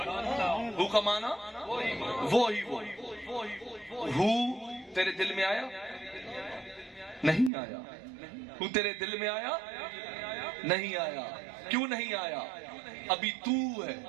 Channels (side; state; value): left; drops out; at 7.5 s